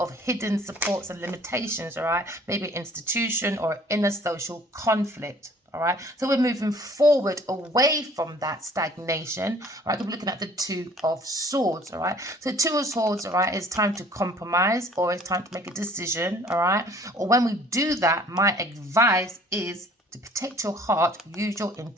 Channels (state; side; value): normal; both; correlation 0.54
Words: hidden supports and limitations, all right, maybe an institution or inner social conflict. All right, so we're moving forward away from that stagnation. All right, we're looking at the 2 of Swords. All right, so 2 of Swords. All right, it's time to compromise or it's time to make a decision. All right, or when we do that, my advice is to protect your heart, use your